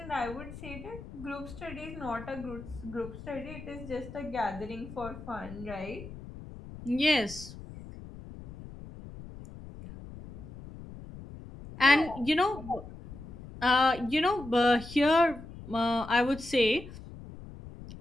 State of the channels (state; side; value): noise; left; rumble, 14 dB below the sound